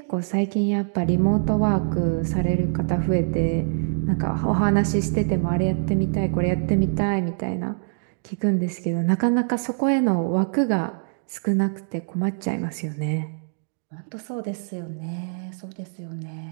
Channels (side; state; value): left; silent; digital silence